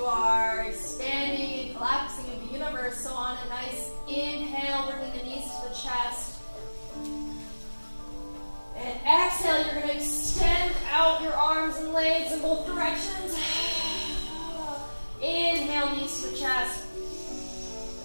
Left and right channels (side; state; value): both; inverted; correlation -1.00